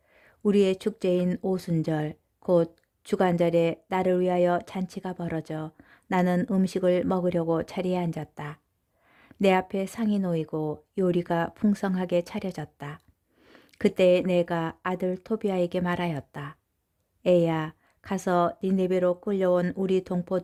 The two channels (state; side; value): identical; both; correlation 1.00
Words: 우리의 축제인 오순절 곧 주간절에 나를 위하여 잔치가 벌어져 나는 음식을 먹으려고 자리에 앉았다. 내 앞에 상이 놓이고 요리가 풍성하게 차려졌다. 그때 내가 아들 토비아에게 말하였다. 애야, 가서 니네베로 끌려온 우리